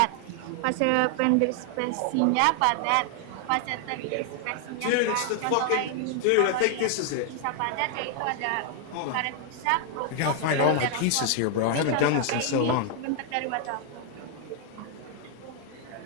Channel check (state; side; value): different; both; correlation 0.00